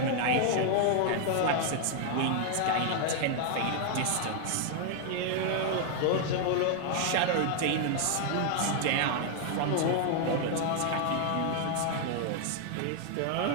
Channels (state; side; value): different; both; correlation 0.00